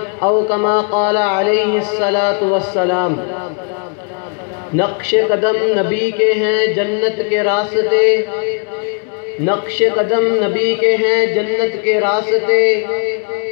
أو كما قال عليه الصلاة والسلام. نقش قدم نبی کے ہیں جنت کے راستے، نقش قدم نبی کے ہیں جنت کے راستے،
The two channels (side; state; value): right; quieter; 39.4 dB